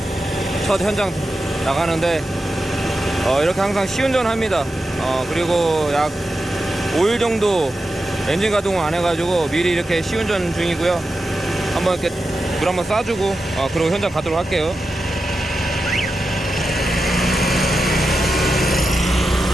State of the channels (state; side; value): normal; both; correlation 0.90